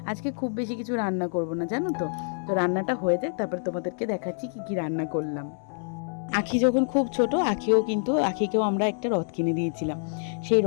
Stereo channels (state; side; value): silent; right; 60 dB below the other